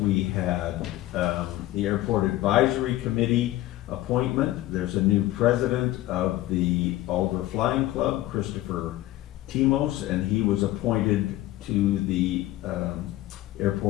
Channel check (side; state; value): right; quieter; 16.0 dB